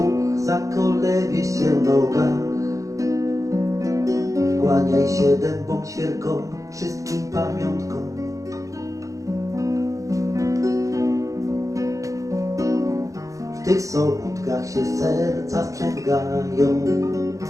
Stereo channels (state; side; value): late; left; 0.16 ms